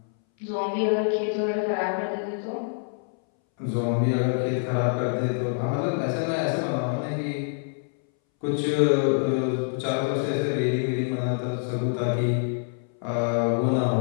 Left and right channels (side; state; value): right; silent; 61 dB below the other